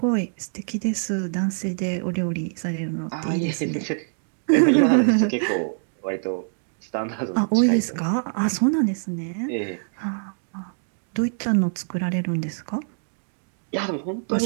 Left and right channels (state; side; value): silent; left; digital silence